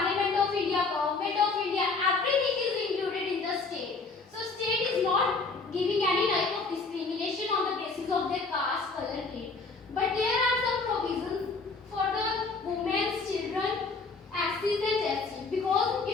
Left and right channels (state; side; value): quieter; right; 4.0 dB